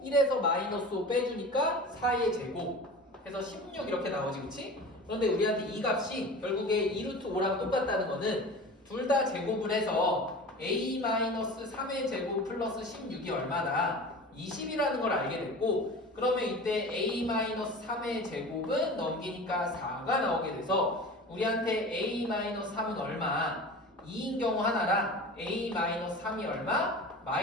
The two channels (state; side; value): normal; both; correlation 0.35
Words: 1에서 마이너스 5 빼주니까 4의 제곱 해서 16 이렇게 나오지 그치? 그런데 우리한테 이 값이 결국에 2루트 5랑 똑같다는 거는 둘 다 제곱을 해서 A-3의 제곱 플러스 16이 얼마나 20이라는 걸 알게 됐고 그러면 이때 A-3의 제곱은 넘기니까 4가 나오게 돼서 우리한테 A-3은 얼마? 2인 경우 하나랑 A-3이 얼마?